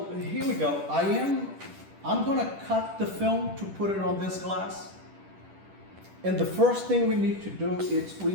here we go. I'm gonna cut the film to put it on this glass. And the first thing we need to do is we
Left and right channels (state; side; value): late; left; 10 ms